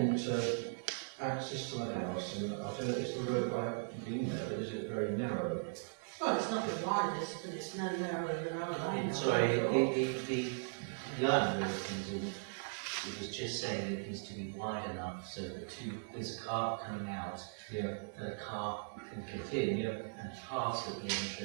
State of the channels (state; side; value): silent; left; digital silence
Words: access to the house, and I don't know, it's the road, I haven't been there, but is it very narrow? Well, it's not the widest, but it's no narrower than our lane. Sorry, the island of things, it was just saying it needs to be wide enough so that there's a car coming out, Yeah. that a car can get in, and pass at the